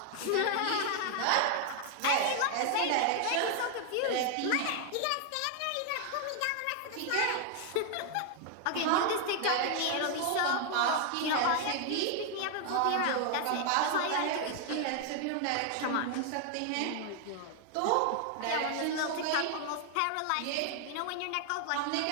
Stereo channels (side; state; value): both; different; correlation 0.00